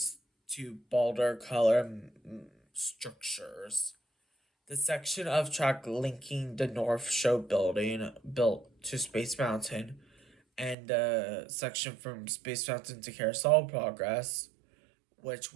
to bolder color structures. The section of track linking the North Show building built to Space Mountain and the section from Space Mountain to Carousel Progress, which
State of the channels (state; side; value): drops out; left; at 10.8 s